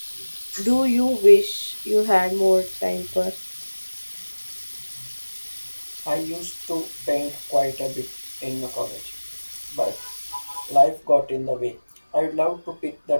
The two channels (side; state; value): both; inverted; correlation -1.00